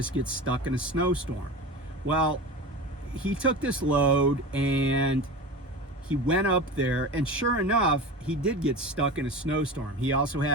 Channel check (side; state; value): both; normal; correlation 0.30